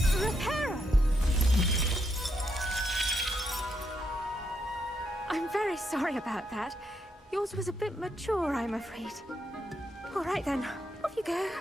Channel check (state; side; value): normal; both; correlation 0.79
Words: Reparo! I'm very sorry about that. Yours was a bit mature, I'm afraid. All right then, off you go.